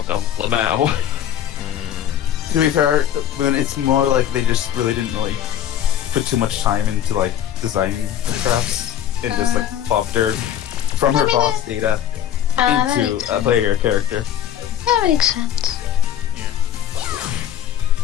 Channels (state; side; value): quieter; right; 10.4 dB